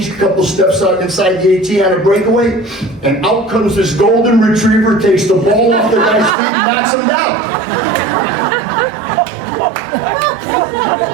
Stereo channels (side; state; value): left; drops out; at 6.4 s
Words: a couple steps out inside the 18 on a breakaway, and out comes this golden retriever, takes the ball off the guy's feet and knocks him down.